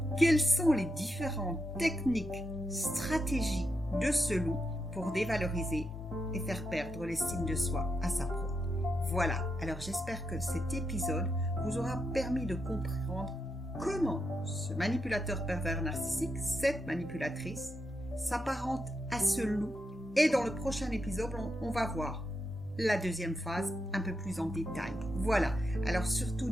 quelles sont les différentes techniques stratégie de ce loup pour dévaloriser et faire perdre l'estime de soi à sa proie. Voilà, alors j'espère que cet épisode vous aura permis de comprendre comment ce manipulateur pervers narcissique, cette manipulatrice, s'apparente à ce loup. Et dans le prochain épisode, on va voir la deuxième phase un peu plus en détail. Voilà, alors surtout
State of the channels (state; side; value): normal; both; correlation 0.84